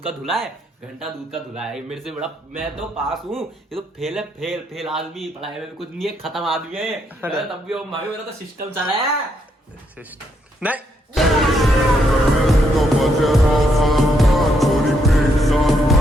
का धुला है, घंटा दूध का धुला है? मेरे से बड़ा मैं तो पास हूँ, ये तो फेल है। फेल फेल आदमी, पढ़ाई में कुछ नहीं है, खत्म आदमी है। तब भी मेरा तो सिस्टम चला है। नहीं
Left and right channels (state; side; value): normal; both; correlation 0.76